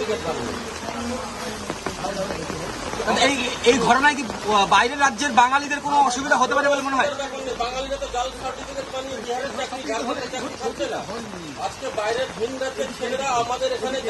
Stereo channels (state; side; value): identical; both; correlation 1.00